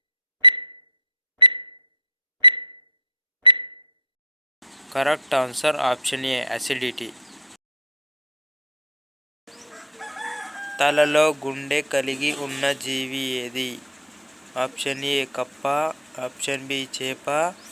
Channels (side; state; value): both; normal; correlation 0.14